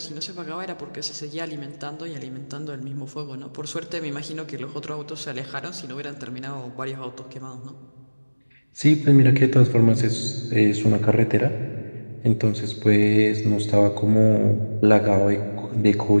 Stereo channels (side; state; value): both; inverted; correlation -1.00